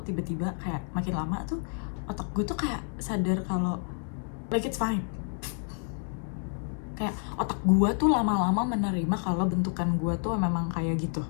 tiba-tiba kayak makin lama tuh otak gue tuh kayak sadar kalau like it's fine. Kayak otak gue tuh lama-lama menerima kalau bentukan gue tuh memang kayak gitu.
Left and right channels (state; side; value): silent; right; 58 dB below the other